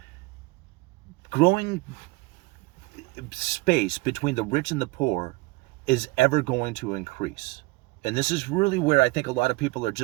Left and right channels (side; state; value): left; quieter; 23.5 dB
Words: growing space between the rich and the poor is ever going to increase. And this is really where I think a lot of people are